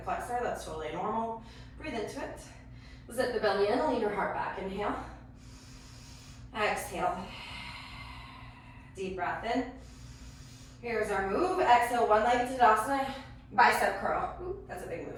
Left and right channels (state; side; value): identical; both; correlation 1.00